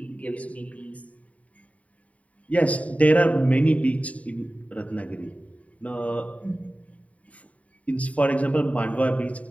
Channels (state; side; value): late; right; 0.068 ms